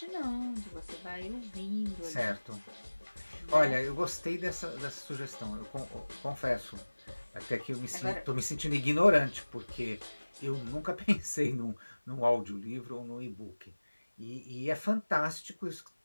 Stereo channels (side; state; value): both; inverted; correlation -1.00